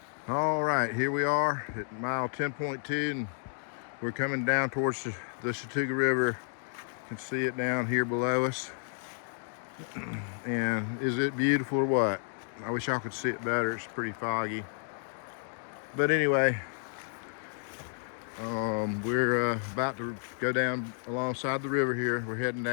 All right, here we are at mile 10.2, and we're coming down towards the Chattooga River. You can see it down here below us. And is it beautiful or what? I wish y'all could see it better. It's pretty foggy. But anyway, we're about to go down alongside the river here. We're heading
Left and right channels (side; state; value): right; silent; 57 dB below the other